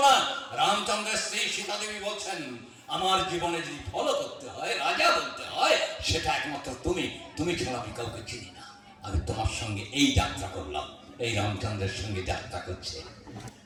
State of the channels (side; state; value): both; identical; correlation 1.00